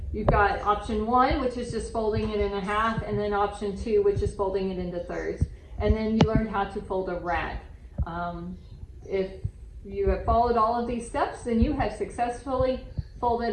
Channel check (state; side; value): identical; both; correlation 1.00